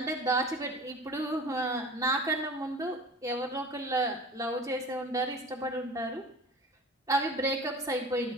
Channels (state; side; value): normal; both; correlation 0.39